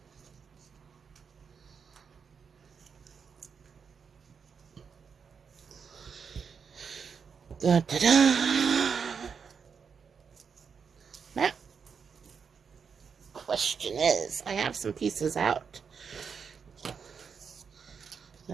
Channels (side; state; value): left; quieter; 6.2 dB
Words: Da, da, da. Now, question is, I have some pieces out